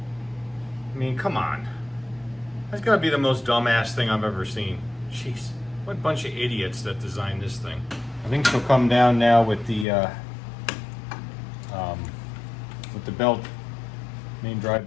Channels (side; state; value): right; drops out; at 9.9 s